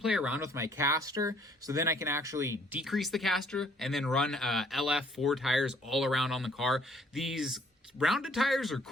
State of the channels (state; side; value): normal; both; correlation 0.62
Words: around with my caster, so then I can actually decrease the caster and then run LF4 tires all around on the car. These rounded tires are